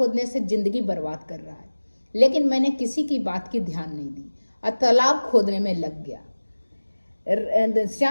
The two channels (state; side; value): inverted; both; correlation -1.00